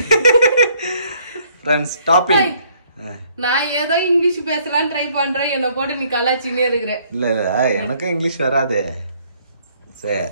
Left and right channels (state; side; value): inverted; both; correlation -0.64